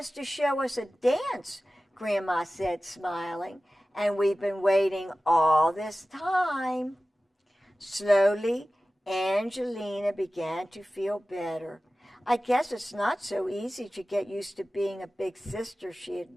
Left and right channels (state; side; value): normal; both; correlation 0.96